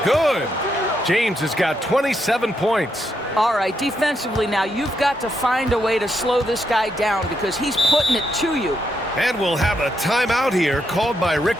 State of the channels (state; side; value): normal; both; correlation 0.80